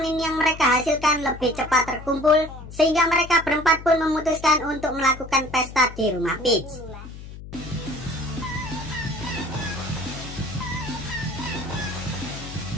yang mereka hasilkan lebih cepat terkumpul, sehingga mereka berempat pun memutuskan untuk melakukan pesta di rumah Peach.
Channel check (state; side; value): noise; left; hum, 13 dB below the sound